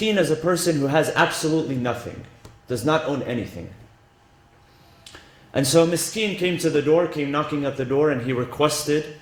is a person who has absolutely nothing, does not own anything. And so Miskeen came to the door, came knocking at the door, and he requested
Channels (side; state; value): both; identical; correlation 1.00